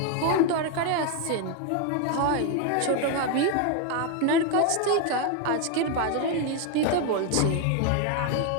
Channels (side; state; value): both; different; correlation 0.01